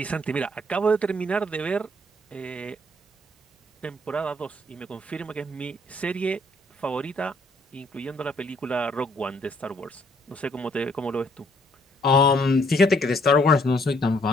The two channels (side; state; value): both; normal; correlation 0.66